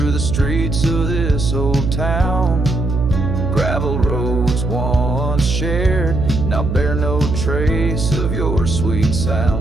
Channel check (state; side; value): noise; right; hum, 2 dB below the sound